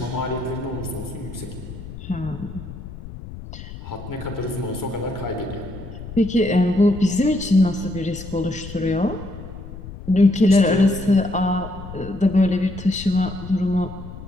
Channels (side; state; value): left; noise; rumble, 12 dB below the sound